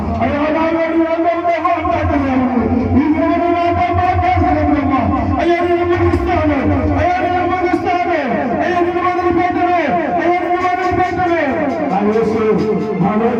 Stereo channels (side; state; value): both; identical; correlation 1.00